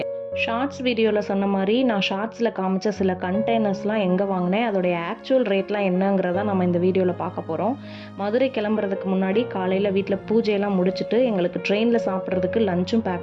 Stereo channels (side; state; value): both; identical; correlation 1.00